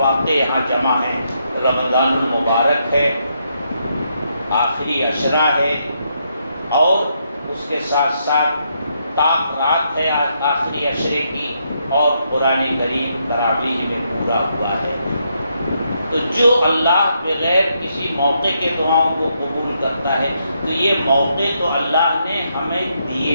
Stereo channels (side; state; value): both; inverted; correlation -0.78